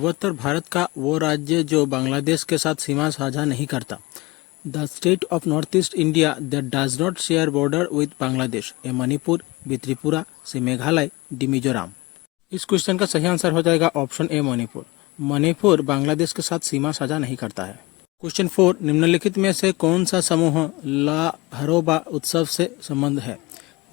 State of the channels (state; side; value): quieter; right; 22.6 dB